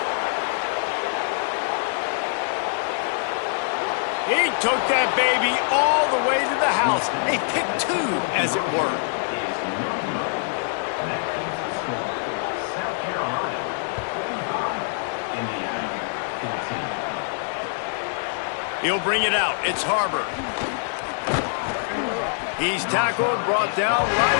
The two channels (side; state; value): right; silent; digital silence